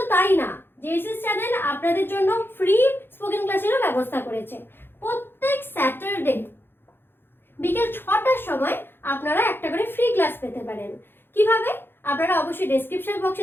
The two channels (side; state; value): right; late; 0.10 ms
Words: তাই না, জেএসএস চ্যানেল আপনাদের জন্য ফ্রি স্পোকেন ক্লাসেরও ব্যবস্থা করেছে। প্রত্যেক স্যাটারডে বিকেল 6টার সময় আপনারা একটা করে ফ্রি ক্লাস পেতে পারেন। কিভাবে? আপনারা অবশ্যই ডেসক্রিপশন বক্সে